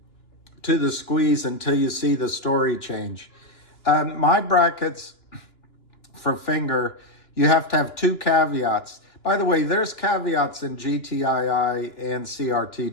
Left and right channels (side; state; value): right; late; 2.9 ms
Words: to the squeeze until you see the story change. My brackets for finger, you have to have two caveats. By the way, there's caveats in GTII and